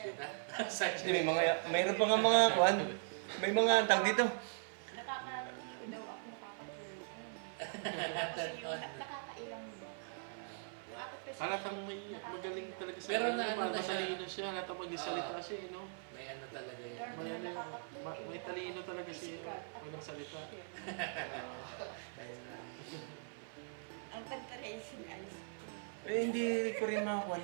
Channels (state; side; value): silent; left; 51 dB below the other